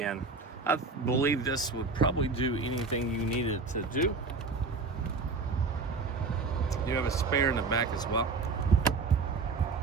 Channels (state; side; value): quieter; left; 4.2 dB